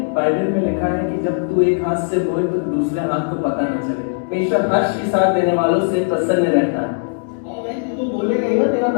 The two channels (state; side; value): silent; right; digital silence